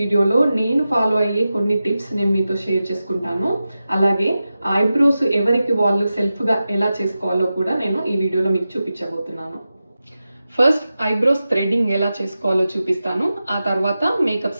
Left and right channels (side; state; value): both; inverted; correlation -0.93